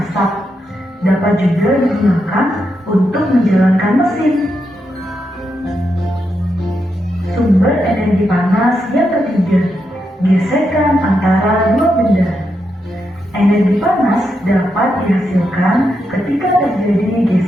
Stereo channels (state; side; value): normal; both; correlation 0.83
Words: dapat juga digunakan untuk menjalankan mesin. Sumber energi panas yang ketiga, gesekan antara dua benda. Energi panas dapat dihasilkan ketika terjadi